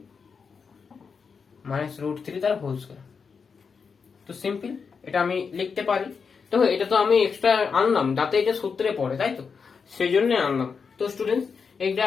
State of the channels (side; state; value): right; quieter; 5.7 dB